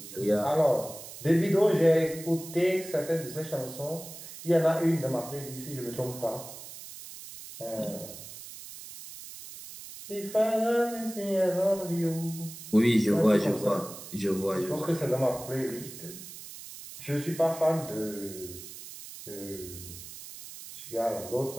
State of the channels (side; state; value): right; noise; hiss, 13 dB below the sound